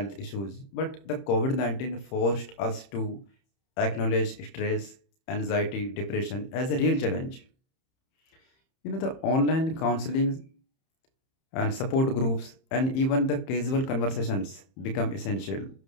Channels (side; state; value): right; late; 31 ms